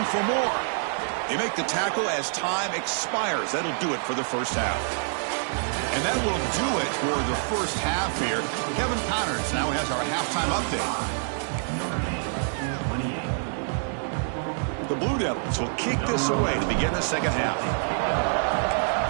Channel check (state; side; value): silent; left; 61 dB below the other